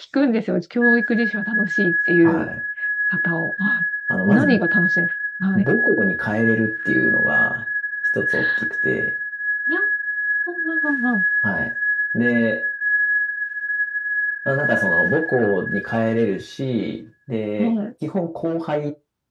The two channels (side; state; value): both; identical; correlation 1.00